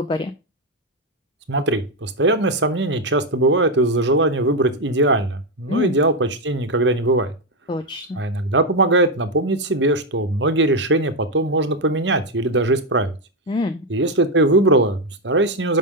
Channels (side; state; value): both; normal; correlation 0.05